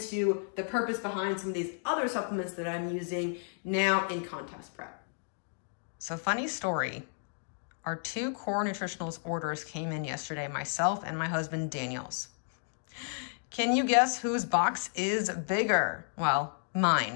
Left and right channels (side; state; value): right; silent; digital silence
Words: the purpose behind some of these other supplements that I'm using now in contest prep. So funny story, our 2 Core Nutritionals orders came in yesterday, myself and my husband Daniel's. Can you guess whose box is bigger? Well,